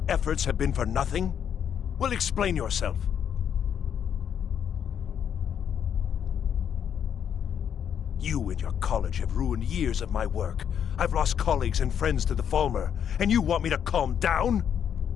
efforts have been for nothing? Well, explain yourself. You and your college have ruined years of my work. I've lost colleagues and friends to the Falmer, and you want me to calm down?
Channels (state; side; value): quieter; right; 8.5 dB